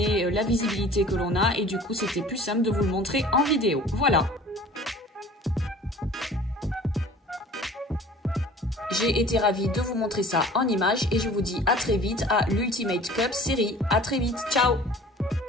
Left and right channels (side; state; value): both; normal; correlation 0.46